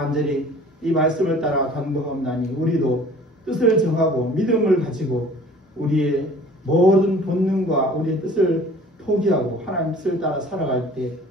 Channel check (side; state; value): both; normal; correlation 0.48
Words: 이 말씀을 따라 간구하옵나니 우리도 뜻을 정하고 믿음을 가지고 우리의 모든 본능과 우리의 뜻을 포기하고 하나님 뜻을 따라 살아갈 때